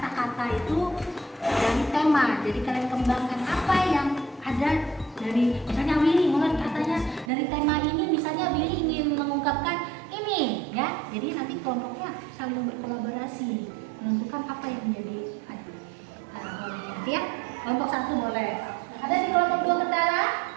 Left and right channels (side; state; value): left; drops out; at 7.3 s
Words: itu dari tema. Jadi kalian kembangkan apa yang ada dari, misalnya Willy mulai katanya dari tema ini, misalnya Willy ingin mengungkapkan ini, ya. Jadi nanti kelompoknya saling berkolaborasi menentukan apa yang menjadi boleh nanti ya. Kelompok 1 boleh. Ada di kelompok 2 Ketara.